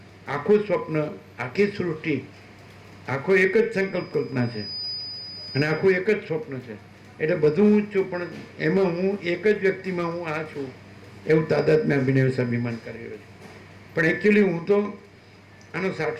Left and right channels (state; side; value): identical; both; correlation 1.00